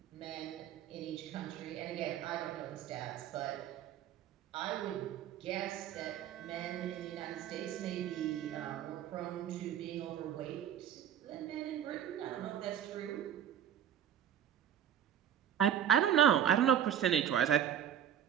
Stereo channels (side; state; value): left; quieter; 9.9 dB